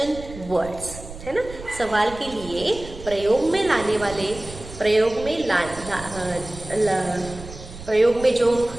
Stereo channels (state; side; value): noise; right; rumble, 14 dB below the sound